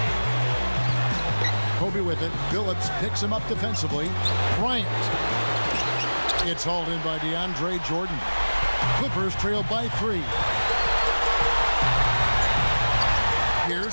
Kobe with it. Billups picks him up defensively. Bryant. It's hauled in by DeAndre Jordan. Clippers trail by 3.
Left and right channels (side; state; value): both; inverted; correlation -1.00